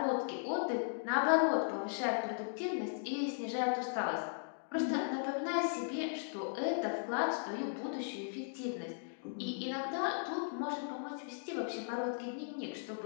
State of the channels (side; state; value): right; silent; digital silence